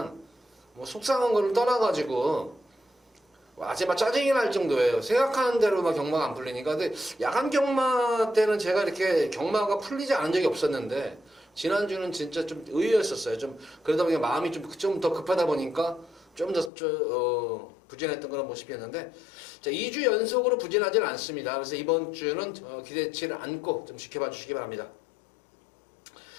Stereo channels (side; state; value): right; drops out; at 16.7 s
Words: 뭐 속상한 거를 떠나가지고 아직 막 짜증이 날 정도예요. 생각하는 대로 막 경마가 안 풀리니까. 근데 야간 경마 때는 제가 이렇게 경마가 풀리지 않은 적이 없었는데 지난주는 진짜 좀 의외였었어요. 좀 그러다 보니까 마음이 좀 더 급하다 보니까 좀 더 부진했던 그런 모습이었는데, 자, 2주 연속으로 부진하지는 않습니다. 그래서 이번 주는 기대치를 안고 좀 지켜봐 주시기 바랍니다.